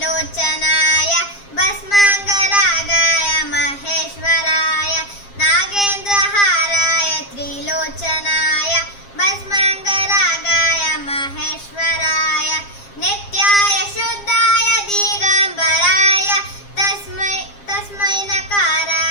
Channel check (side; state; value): right; late; 7.4 ms